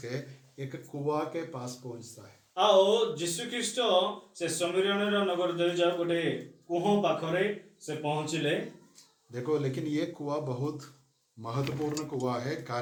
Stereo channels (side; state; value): both; identical; correlation 1.00